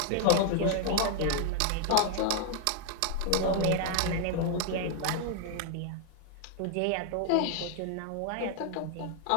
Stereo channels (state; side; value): different; both; correlation 0.00